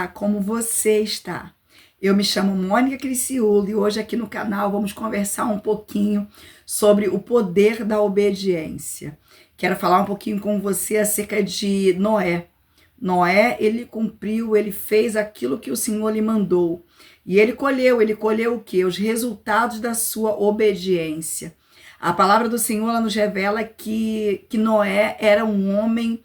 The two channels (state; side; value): identical; both; correlation 1.00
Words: como você está? Eu me chamo Mônica Criciúlo e hoje aqui no canal vamos conversar um pouquinho sobre o poder da obediência. Quero falar um pouquinho com você acerca de Noé. Noé, ele cumpriu, ele fez aquilo que o Senhor lhe mandou. E ele colheu o quê? Os resultados da sua obediência. A palavra do Senhor ela nos revela que Noé era um homem